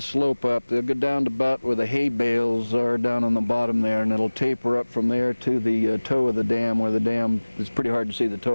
slope up. They'll go down to about where the hay bales are down on the bottom there, and it'll taper up from there to the toe of the dam, where the dam, it's pretty hard to see the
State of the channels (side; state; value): both; inverted; correlation -1.00